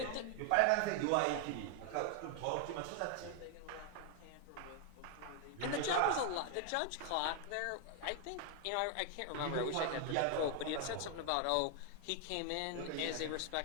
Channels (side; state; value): both; different; correlation 0.00